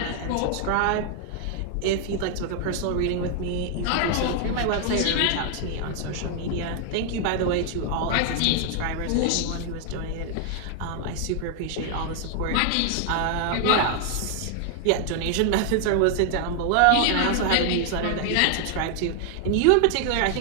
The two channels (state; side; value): different; both; correlation 0.00